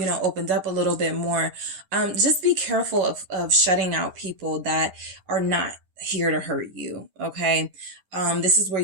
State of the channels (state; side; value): late; left; 10 ms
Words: know, opened up a little bit more. Just be careful of shutting out people that are not here to hurt you. Okay. This is where